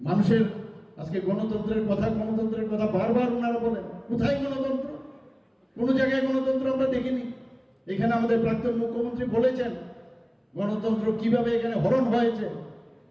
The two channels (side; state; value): both; identical; correlation 1.00